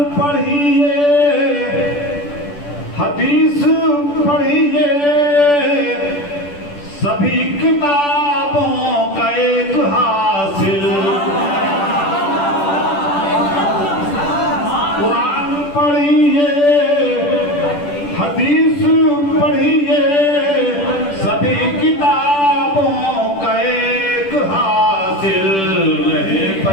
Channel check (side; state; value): right; late; 10 ms